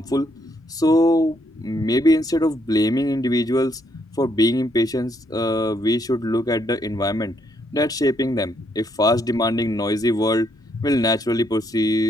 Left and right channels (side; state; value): both; normal; correlation 0.74